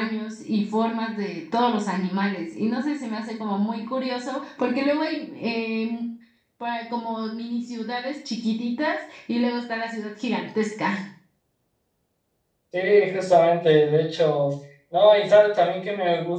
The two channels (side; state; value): both; identical; correlation 1.00